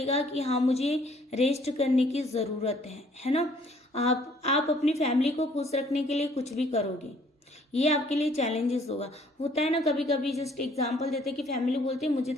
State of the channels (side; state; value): both; normal; correlation 0.61